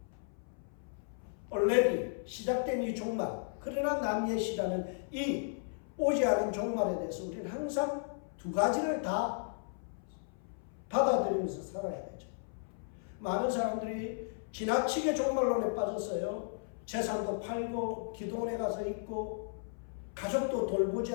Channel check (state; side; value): silent; right; 54 dB below the other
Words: already 시작된 이 종말, 그러나 남예시라는 이 오지 않은 종말에 대해서 우리는 항상 두 가지를 다 받아들이면서 살아야 되죠. 많은 사람들이 지나치게 종말론에 빠졌어요. 재산도 팔고 기도원에 가서 있고 가족도 돌보지